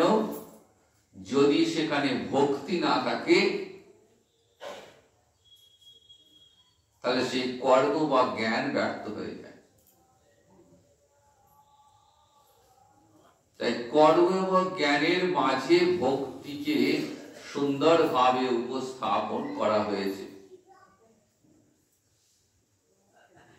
যদি সেখানে ভক্তি না থাকে, তাহলে সেই কর্ম বা জ্ঞান ব্যর্থ হয়ে যায়। তাই কর্ম এবং জ্ঞানের মাঝে ভক্তিকে সুন্দরভাবে উপস্থাপন করা হয়েছে।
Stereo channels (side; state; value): both; identical; correlation 1.00